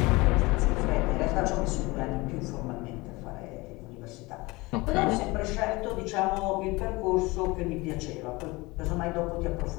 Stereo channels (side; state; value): right; quieter; 23.0 dB